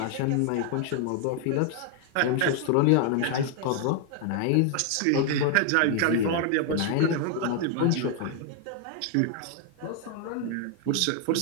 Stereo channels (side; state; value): both; different; correlation 0.00